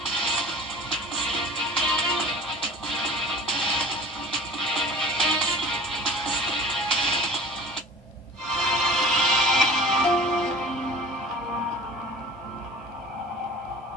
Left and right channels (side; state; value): both; normal; correlation 0.42